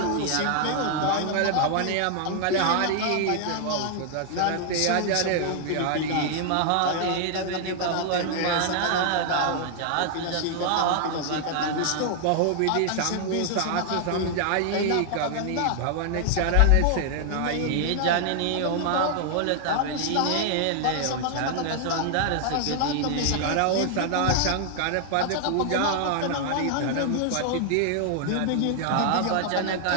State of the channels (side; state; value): both; different; correlation 0.00